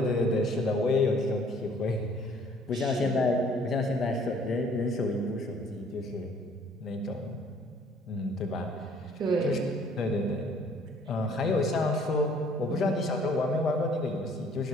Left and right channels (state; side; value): normal; both; correlation 0.58